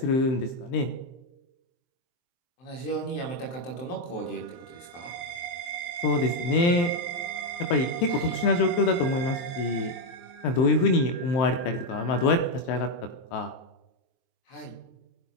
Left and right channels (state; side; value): late; right; 23 ms